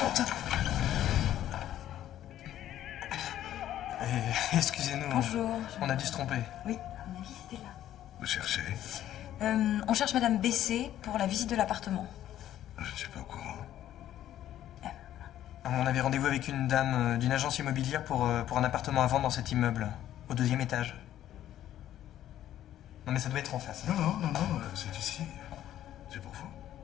Excusez-nous. Bonjour. On a dû se tromper. Oui, à mon avis, c'était là. Vous cherchez? On cherche Madame Bessé pour la visite de l'appartement. Je ne suis pas au courant. On avait rendez-vous avec une dame d'une agence immobilière pour un appartement à vendre dans cet immeuble, au 2e étage. Non mais ça doit être en face. Non, c'est ici. C'est pour vous.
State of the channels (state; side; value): quieter; right; 12.1 dB